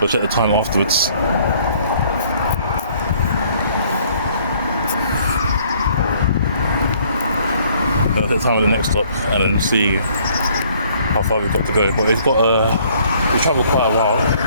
We'll check the time afterwards. I'll take the time at the next stop and then see how far we've got to go. But we've travelled quite a while.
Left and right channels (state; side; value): inverted; both; correlation -0.61